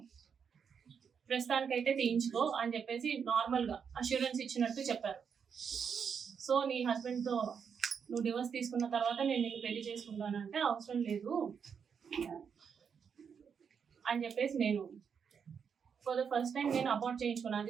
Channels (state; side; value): quieter; left; 6.8 dB